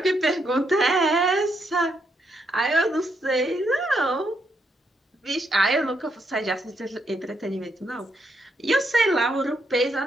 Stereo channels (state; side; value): normal; both; correlation 0.78